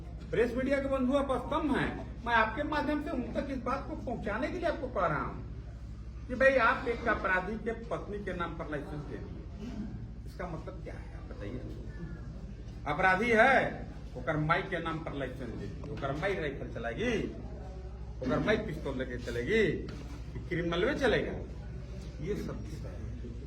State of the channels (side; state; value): both; identical; correlation 1.00